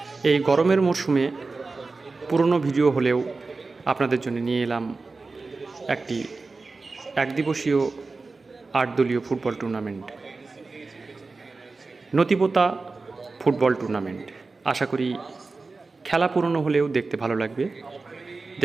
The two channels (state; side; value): quieter; left; 3.8 dB